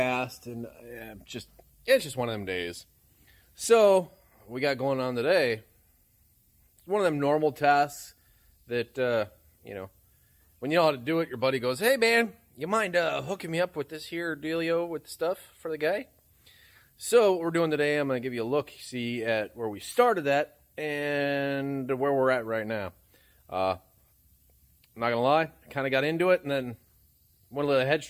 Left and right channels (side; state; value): both; identical; correlation 1.00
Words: and it's just one of them days. So what we got going on today, it's one of them normal tasks that when you know how to do it, your buddy goes, "Hey man, you mind hooking me up with this here dealio with the stuff for the guy?" So what we're doing today, I'm going to give you a look, see at where we started at and where we're at right now. I'm not going to lie, I kind of got into it and then went a little